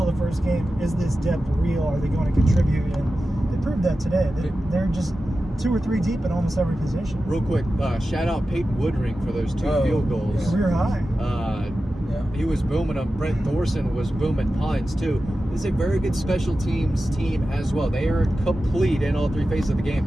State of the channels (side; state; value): both; normal; correlation 0.93